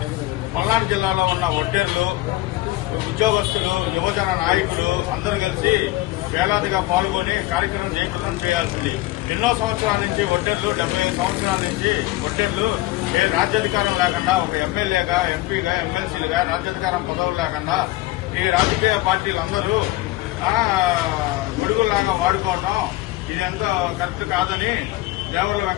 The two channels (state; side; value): quieter; right; 18.0 dB